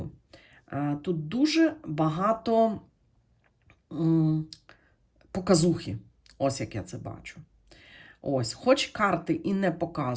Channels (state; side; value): identical; both; correlation 1.00